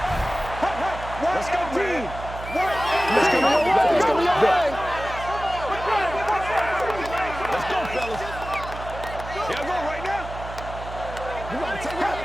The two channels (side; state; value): right; noise; hum, 11 dB below the sound